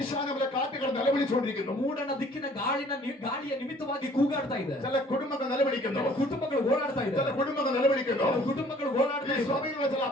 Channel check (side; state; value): both; normal; correlation 0.55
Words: കാറ്റുകൾ നിലവിളിച്ചുകൊണ്ടിരിക്കുന്നു. ಮೂಡನ ದಿಕ್ಕಿನ ಗಾಳಿಯ ನಿಮಿತ್ತವಾಗಿ ಕೂಗಾಡ್ತಾ ಇದೆ. ചില കുടുംബങ്ങൾ നിലവിളിക്കുന്നു. ಕೆಲವು ಕುಟುಂಬಗಳು ಓಡಾಡ್ತಾ ചില ಇದ್ದಾರೆ. കുടുംബങ്ങൾ നിലവിളിക്കുന്നു. ಕೆಲವು ಕುಟುಂಬಗಳು ಓಡಾಡ್ತಾ ഈ ಇದ್ದಾರೆ. സഭയിലുള്ള ചില